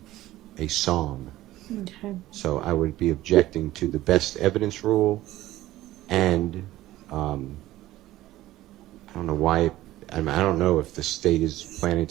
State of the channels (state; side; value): quieter; left; 15.7 dB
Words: song. Okay. So I would be objecting to the best evidence rule, and I don't know why. I don't know if the state is planning